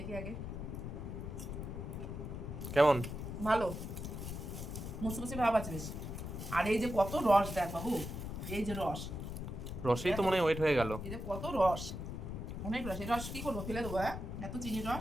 আগে। কেমন? ভালো, মুচমুচে ভাব আছে বেশ। আর এই যে কত রস দেখ বাবু, এই যে রস, রসেই তো মনে হয় ওয়েট হয়ে গেল। এই যে কত রস, অনেক রস। এই রস কি করবো, ফেলে দেবো? হ্যাঁ, এত চিনির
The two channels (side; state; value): left; noise; rumble, 6 dB below the sound